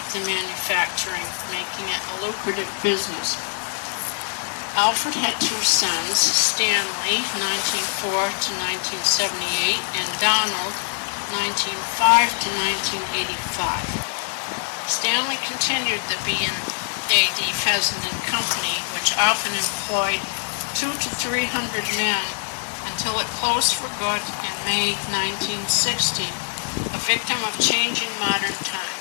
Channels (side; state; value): right; silent; digital silence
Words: the manufacturing, making it a lucrative business. Alfred had two sons, Stanley, 1904 to 1978, and Donald, 1905 to 1985. Stanley continued the B&AD Fessenden Company, which often employed 200 to 300 men until it closed for good in May 1960, a victim of changing modern